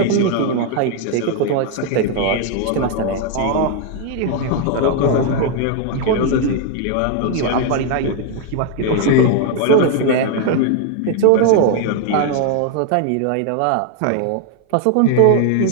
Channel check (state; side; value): different; both; correlation 0.00